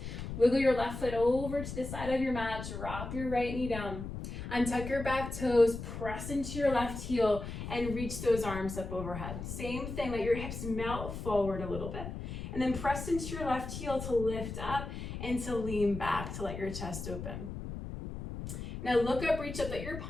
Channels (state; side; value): noise; left; rumble, 7 dB below the sound